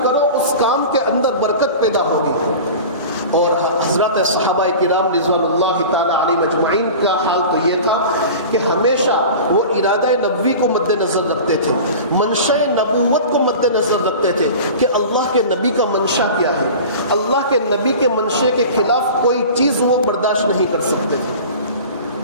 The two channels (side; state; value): both; inverted; correlation -0.36